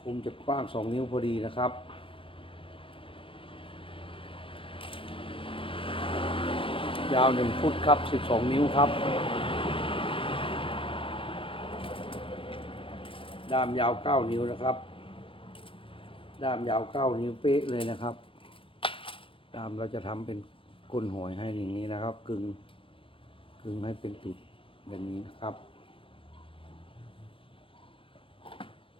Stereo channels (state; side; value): late; right; 0.25 ms